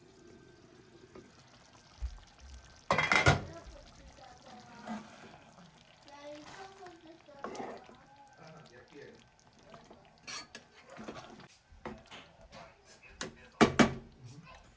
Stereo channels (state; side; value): identical; both; correlation 1.00